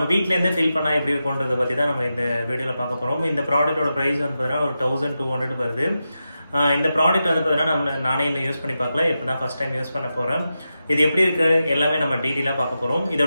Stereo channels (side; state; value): both; inverted; correlation -0.90